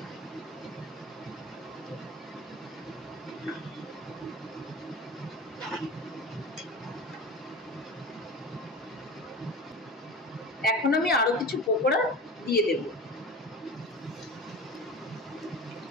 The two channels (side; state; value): both; normal; correlation 0.33